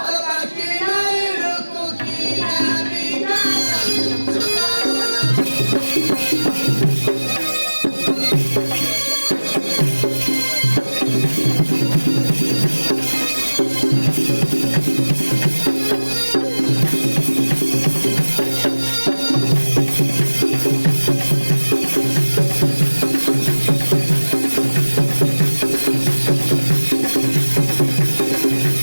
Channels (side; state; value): both; inverted; correlation -1.00